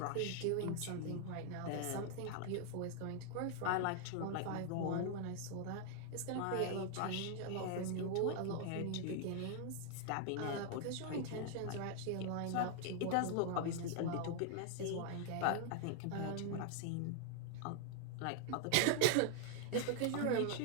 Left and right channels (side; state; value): both; different; correlation 0.00